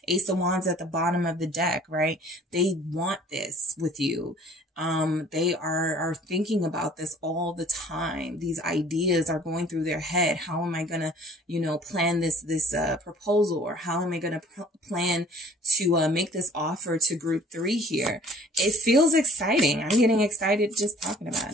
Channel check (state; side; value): normal; both; correlation 0.52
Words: Ace of Wands at the bottom of the deck, right? They want this with you. They are thinking about this all the time. These ideas are going through their head. How am I going to, you know, plan this proposal, or how am I going to plan to make this offer to group 3 here? It feels exciting. I'm getting excited just talking